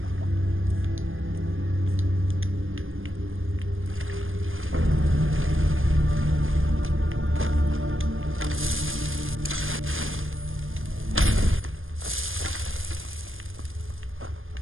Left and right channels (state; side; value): late; left; 0.59 ms